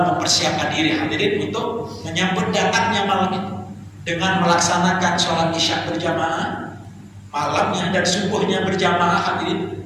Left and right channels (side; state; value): both; identical; correlation 1.00